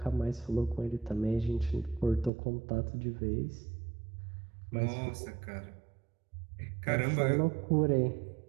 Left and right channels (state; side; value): drops out; left; at 2.3 s